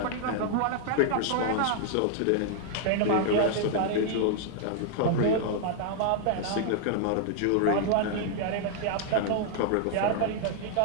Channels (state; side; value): different; both; correlation -0.01